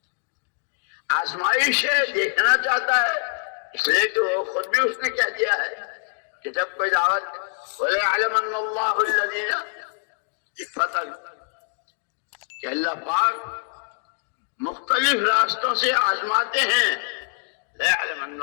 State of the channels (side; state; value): right; silent; digital silence